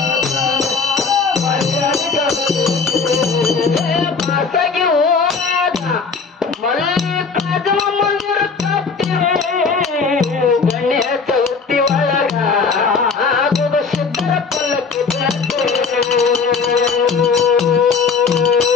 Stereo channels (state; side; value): quieter; right; 5.0 dB